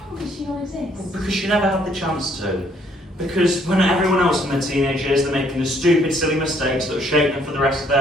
the hell does she not exist? Because she never had the chance to. Because when everyone else in their teenage years, they're making the stupid, silly mistakes that will shape them for the rest of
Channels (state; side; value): normal; both; correlation 0.65